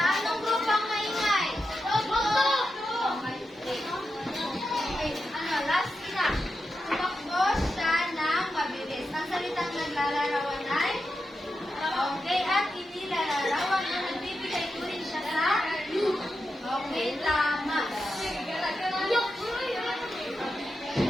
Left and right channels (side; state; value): both; normal; correlation 0.88